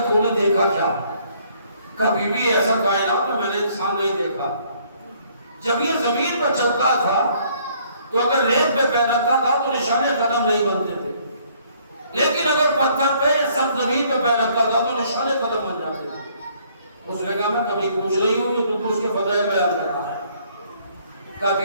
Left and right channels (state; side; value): inverted; both; correlation -0.63